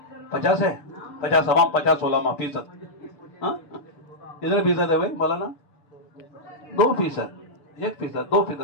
50 ہے. 50 عوام 50 علماء فیصد. کتنے فیصد ہے بھائی مولانا؟ 2%, 1%,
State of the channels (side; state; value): right; late; 6.9 ms